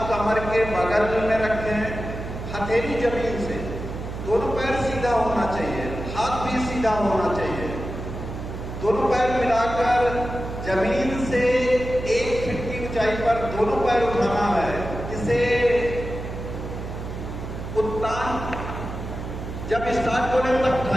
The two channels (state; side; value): noise; right; hum, 8 dB below the sound